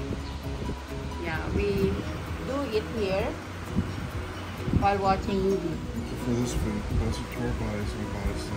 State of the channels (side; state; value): both; identical; correlation 1.00